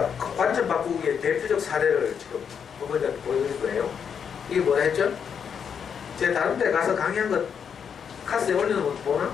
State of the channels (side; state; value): right; quieter; 7.2 dB